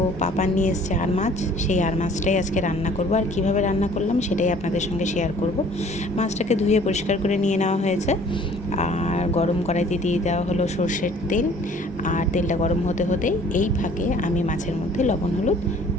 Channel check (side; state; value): both; normal; correlation 0.53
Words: পাপা নিয়ে এসছে আর মাছ, সেই আর মাছটাই আজকে রান্না করব। আর কিভাবে রান্না করলাম সেটাই আপনাদের সঙ্গে শেয়ার করব। মাছটাকে ধুয়ে পরিষ্কার করে নিয়ে নেওয়া হয়েছে, আর গরম কড়াইতে দিয়ে দেওয়া হলো সর্ষের তেল। আর তেলটা গরম হতে হতেই এই ফাঁকে আমি মাছের মধ্যে লবণ হলুদ